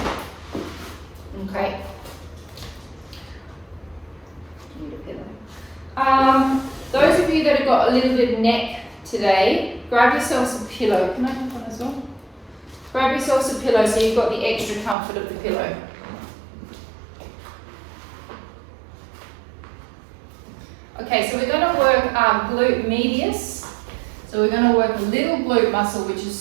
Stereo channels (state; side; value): drops out; left; at 15.0 s